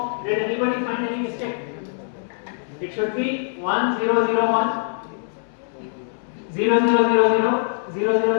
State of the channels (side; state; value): right; silent; 64 dB below the other